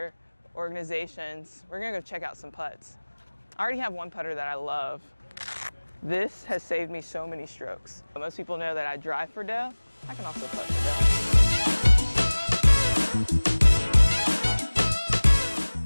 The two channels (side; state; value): both; inverted; correlation -1.00